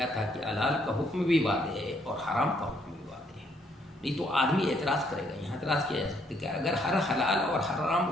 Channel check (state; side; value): normal; both; correlation 0.69